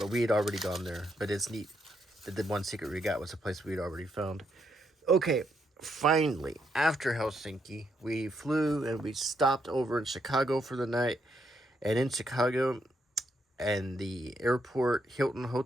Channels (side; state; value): both; normal; correlation 0.77